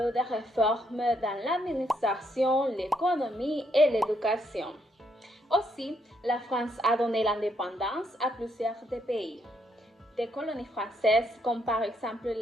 eu des réformes dans l'administration, l'économie et l'éducation. Aussi, la France a donné l'indépendance à plusieurs pays. Des colonies françaises, comme par exemple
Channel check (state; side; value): normal; both; correlation 0.75